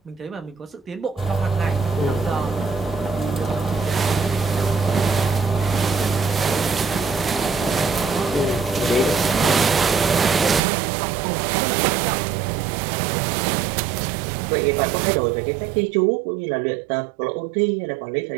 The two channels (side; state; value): left; drops out; at 10.6 s